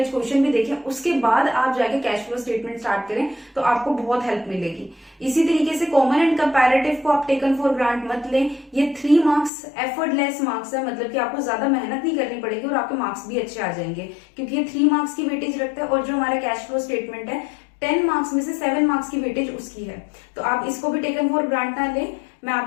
क्वेश्चन भी देखें, उसके बाद आप जाके कैश फ्लो स्टेटमेंट स्टार्ट करें तो आपको बहुत हेल्प मिलेगी। इसी तरीके से कॉमन एंड कंपैरेटिव को आप टेकन फॉर ग्रांट मत लें। ये 3 मार्क्स एफर्टलेस मार्क्स है, मतलब कि आपको ज्यादा मेहनत नहीं करनी पड़ेगी और आपके मार्क्स भी अच्छे आ जाएंगे, क्योंकि ये 3 मार्क्स की वेटेज रखते हैं और जो हमारा कैश फ्लो स्टेटमेंट है 10 मार्क्स में से 7 मार्क्स की वेटेज उसकी है। तो आप इसको भी टेकन फॉर ग्रांट ना लें। मैं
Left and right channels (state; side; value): drops out; right; at 9.5 s